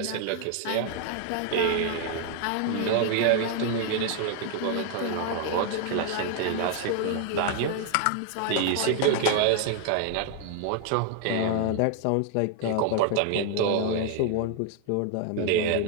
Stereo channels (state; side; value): different; both; correlation 0.00